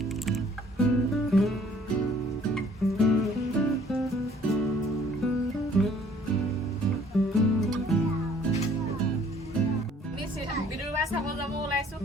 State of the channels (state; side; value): normal; both; correlation 0.58